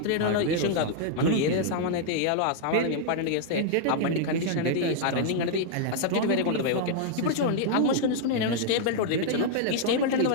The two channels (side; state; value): both; different; correlation -0.01